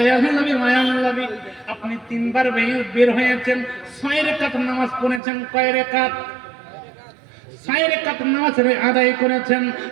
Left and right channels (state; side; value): drops out; left; at 5.2 s